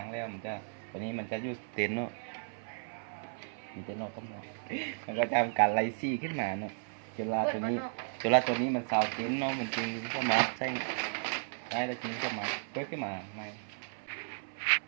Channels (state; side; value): silent; left; 55 dB below the other